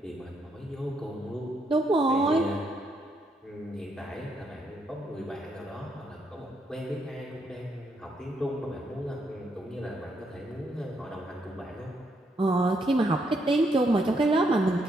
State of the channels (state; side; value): normal; both; correlation 0.76